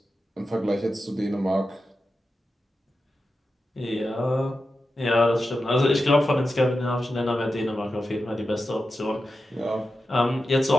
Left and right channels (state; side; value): normal; both; correlation 0.91